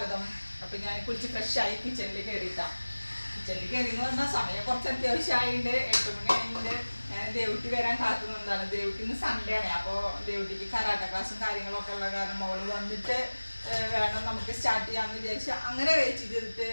അപ്പോൾ ഞാൻ കുളിച്ച് ഫ്രഷായി കിച്ചണിൽ കയറിയിട്ടാണ്. കിച്ചണിൽ കയറിയെന്ന് പറഞ്ഞാൽ സമയം കുറച്ച് അത്യാവശ്യമായിട്ടുണ്ട്. 8 മണി ആയിട്ടുണ്ട്. ഞാൻ ദേവുട്ടി വരാൻ കാത്തുനിന്നതാണ്. ദേവുട്ടി ഇന്ന് സൺഡേ ആണ്. അപ്പോൾ ദേവുട്ടിക്ക് കരാട്ട ക്ലാസ്സും കാര്യങ്ങളൊക്കെ ഉള്ള കാരണം അവൾ വന്നിട്ട് വേണം നമുക്ക് സ്റ്റാർട്ട് ചെയ്യാമെന്ന് വിചാരിച്ച് അങ്ങനെ വെയിറ്റ് ചെയ്തിട്ട്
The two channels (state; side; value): inverted; both; correlation -1.00